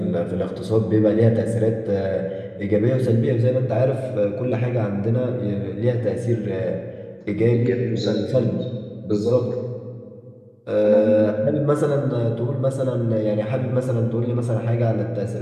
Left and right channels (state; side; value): identical; both; correlation 1.00